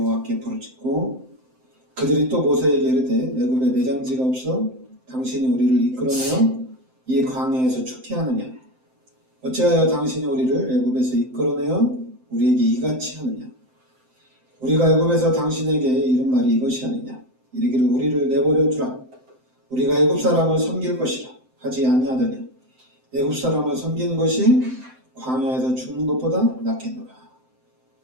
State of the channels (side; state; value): left; late; 7.8 ms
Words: 부르짖고 그들이 또 모세에게 이르되 애굽에 매장지가 없어 당신이 우리를 이끌어내어 이 광야에서 죽게 하느냐. 어찌하여 당신이 우리를 애굽에서 이끌어내어 우리에게 이같이 하느냐. 우리가 애굽에서 당신에게 이른 말이 이것이 아니냐. 이르기를 우리를 내버려 두라. 우리가 애굽 사람을 섬길 것이라 하지 아니하더냐. 애굽 사람을 섬기는 것이 광야에서 죽는 것보다 낫겠노라.